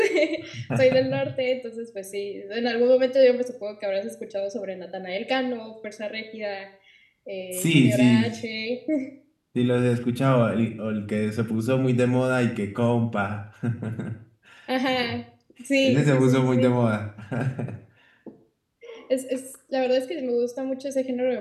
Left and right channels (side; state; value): both; identical; correlation 1.00